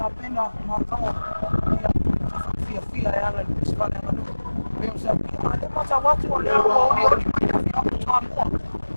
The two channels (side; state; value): both; inverted; correlation -1.00